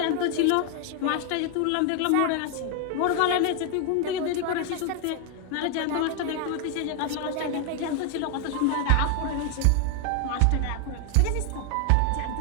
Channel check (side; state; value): both; different; correlation 0.00